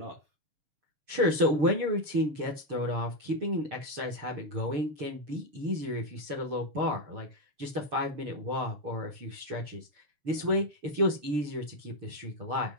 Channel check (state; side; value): late; left; 6.7 ms